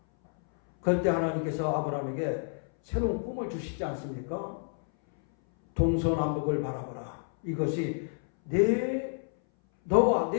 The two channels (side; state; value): right; silent; 58 dB below the other